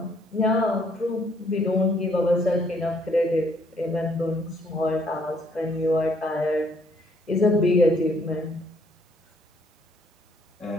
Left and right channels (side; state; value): both; normal; correlation 0.66